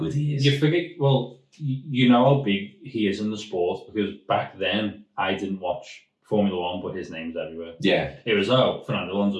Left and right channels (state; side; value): identical; both; correlation 1.00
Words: he is. You forget, well, you know how big he is in the sport, because back then I didn't watch Formula 1, but his name's everywhere. Yeah. It was, Fernando